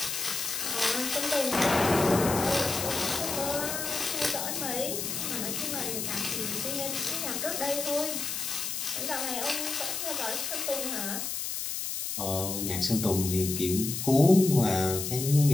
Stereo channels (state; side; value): noise; left; hiss, 3 dB below the sound